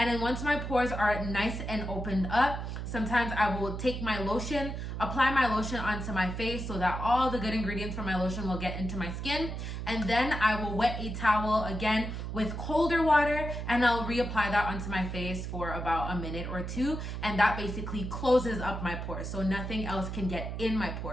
then once my pores are nice and opened up, sometimes I will take my lotion, apply my lotion onto my face so that all the good ingredients from my lotion will get into my skin. And then I will wet a towel again with colder water and I'll reapply that onto my face for about a minute or two. And that basically closes up my pores so nothing else can get in my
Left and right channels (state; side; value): noise; right; hum, 5 dB below the sound